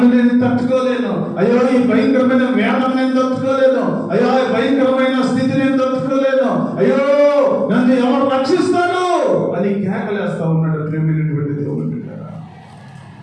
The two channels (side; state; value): both; identical; correlation 1.00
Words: నేను తట్టుకోలేను, అయ్యో ఈ భయంకరమైన వేదన నేను తట్టుకోలేను, అయ్యో ఈ భయంకరమైన స్థితి నేను తట్టుకోలేను, అయ్యో నన్ను ఎవరు రక్షిస్తాడు అని కేకలేస్తా ఉన్నాడు. ప్రేమైనటువంటి దేవుని బిడ్డలారా,